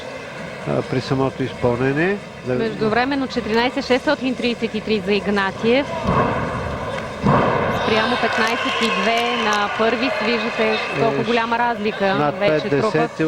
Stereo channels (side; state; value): both; identical; correlation 1.00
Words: при самото изпълнение. Междувременно 14,633 за Игнатиев. Спрямо 15,2 на първи. Виждате колко голяма разлика над вече 5 трупат десети